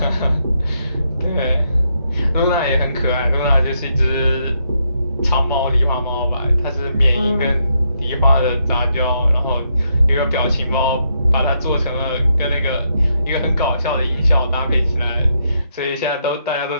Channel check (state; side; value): inverted; both; correlation -0.78